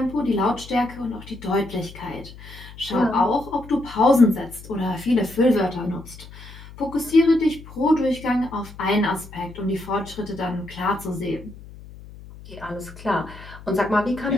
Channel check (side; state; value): left; noise; hum, 17 dB below the sound